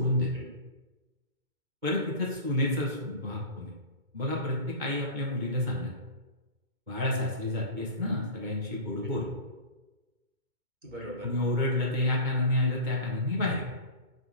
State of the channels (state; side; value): late; left; 2.2 ms